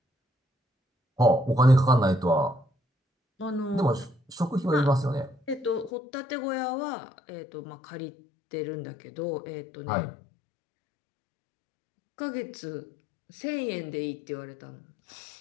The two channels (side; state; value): right; drops out; at 5.9 s